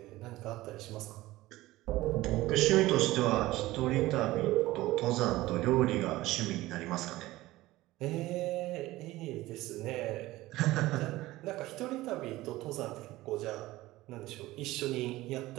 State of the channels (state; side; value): quieter; left; 17.7 dB